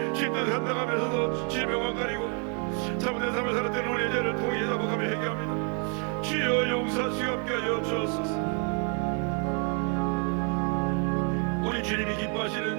힘든 한다고 하면서도 질병만 가리고 잘못된 삶을 살았던 우리의 죄를 통해 자복하며 회개합니다. 주여 용서하시고 함께 하여 주옵소서. 우리 주님이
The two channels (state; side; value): quieter; left; 38.7 dB